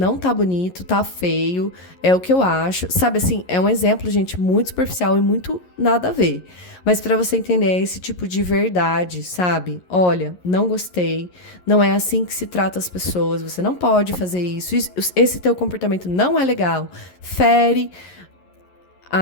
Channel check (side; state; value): right; late; 11 ms